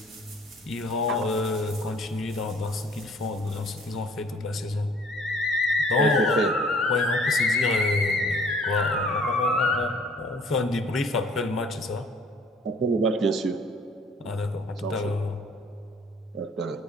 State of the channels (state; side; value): normal; both; correlation 0.55